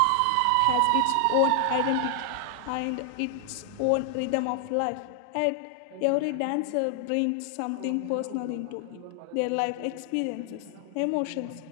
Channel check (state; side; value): different; both; correlation 0.00